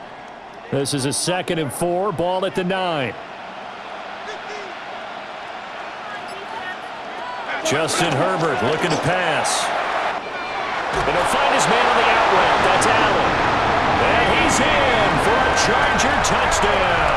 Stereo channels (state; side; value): identical; both; correlation 1.00